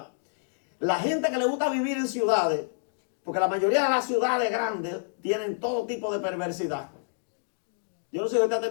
la gente que le gusta vivir en ciudades, porque la mayoría de las ciudades grandes tienen todo tipo de perversidad. Yo no sé si usted ha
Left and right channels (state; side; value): silent; right; digital silence